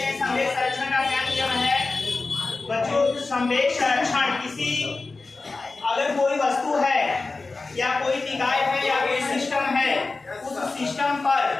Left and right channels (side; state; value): right; quieter; 3.7 dB